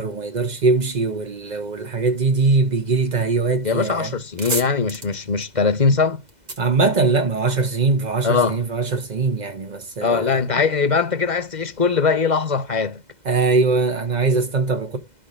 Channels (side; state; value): left; late; 2.0 ms